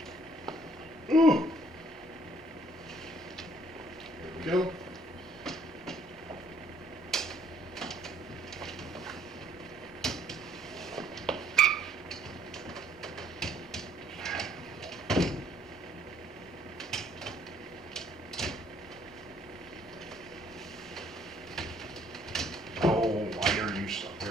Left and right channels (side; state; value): both; normal; correlation 0.63